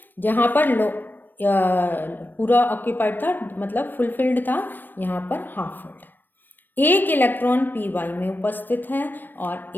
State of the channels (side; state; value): right; late; 0.092 ms